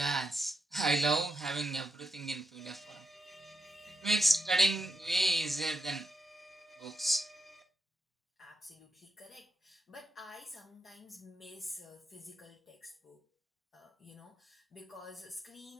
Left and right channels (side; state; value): both; normal; correlation 0.86